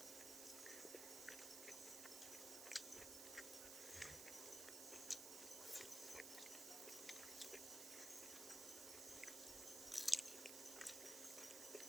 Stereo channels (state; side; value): noise; right; hiss, 3 dB below the sound